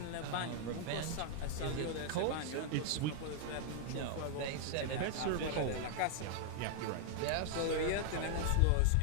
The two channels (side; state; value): both; different; correlation 0.00